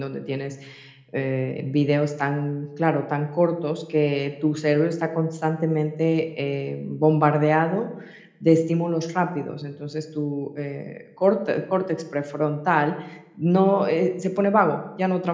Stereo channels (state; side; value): identical; both; correlation 1.00